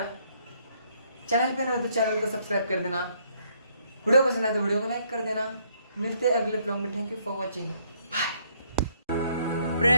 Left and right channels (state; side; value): inverted; both; correlation -0.69